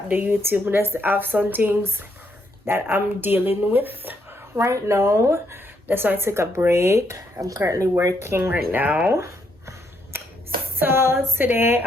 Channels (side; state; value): both; normal; correlation 0.75